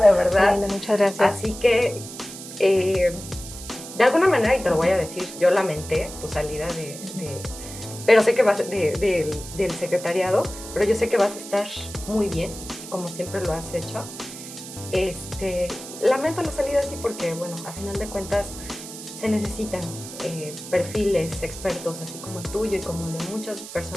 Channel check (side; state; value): right; noise; hiss, 12 dB below the sound